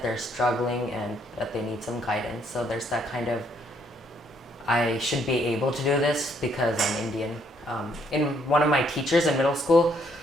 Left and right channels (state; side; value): normal; both; correlation 0.69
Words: they're struggling and that they need some guidance. So there's that kind of, I should be able to do this because I'm Indian. In one of my teachers in middle school,